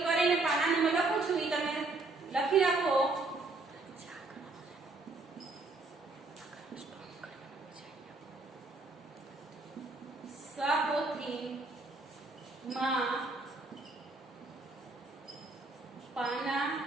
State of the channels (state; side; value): quieter; left; 3.3 dB